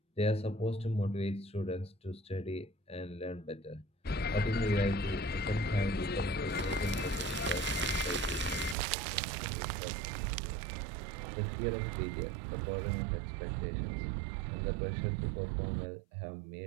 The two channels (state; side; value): drops out; left; at 8.8 s